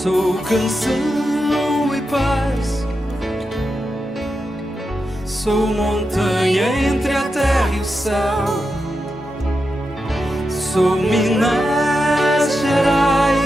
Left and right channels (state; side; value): normal; both; correlation 0.88